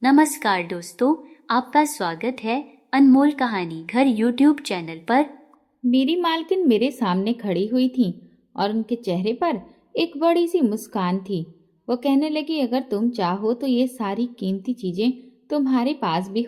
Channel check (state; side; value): identical; both; correlation 1.00